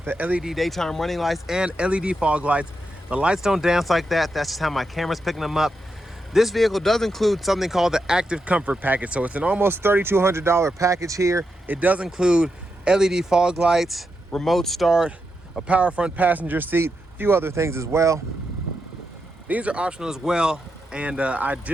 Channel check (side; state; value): both; normal; correlation 0.85